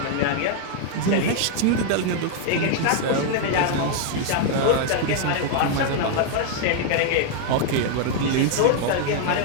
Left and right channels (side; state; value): both; different; correlation 0.00